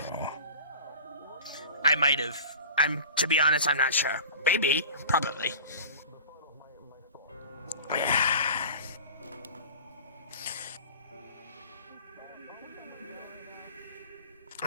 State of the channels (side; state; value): both; inverted; correlation -0.39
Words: I might have. To be honest, I'm not sure. Maybe. Probably.